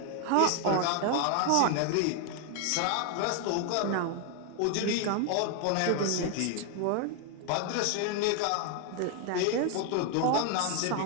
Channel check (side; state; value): both; different; correlation 0.01